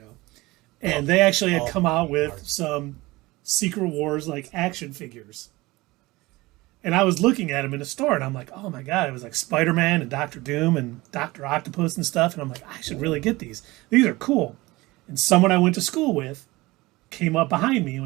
And they actually had come out with some Secret Wars like action figures. And I was looking at them in a store, and I'm like, oh my God, it was like Spider-Man and Doctor Doom and Dr. Octopus and stuff. And I'm like, I should really get these. These are cool. And someone I went to school with came up behind me and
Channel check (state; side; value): quieter; left; 20.8 dB